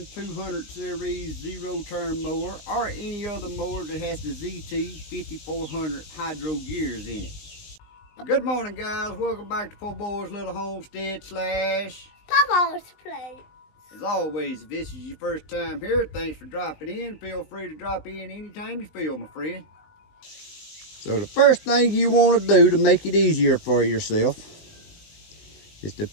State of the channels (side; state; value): right; late; 19 ms